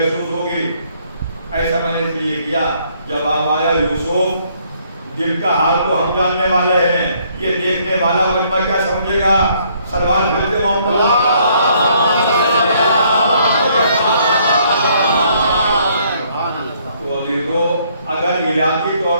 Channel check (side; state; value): both; inverted; correlation -0.66